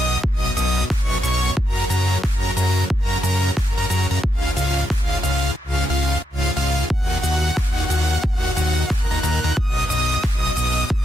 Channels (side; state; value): both; normal; correlation 0.82